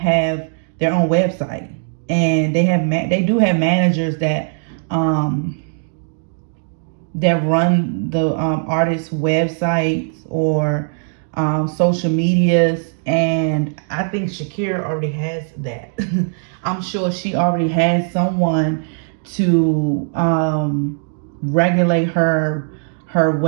their own website, and they do have managers that run the artists' websites or social medias. And I think Shakira already has that. I'm sure she already has someone to regulate her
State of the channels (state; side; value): silent; left; digital silence